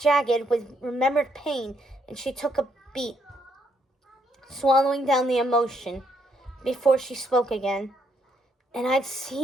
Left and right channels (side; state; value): both; normal; correlation 0.73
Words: with remembered pain, and she took a beat, swallowing down the emotion before she spoke again. And I'd